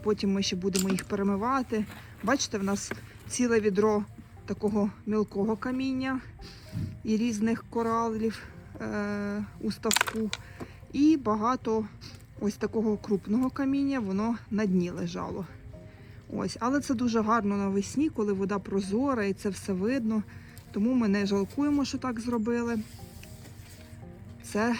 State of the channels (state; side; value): identical; both; correlation 1.00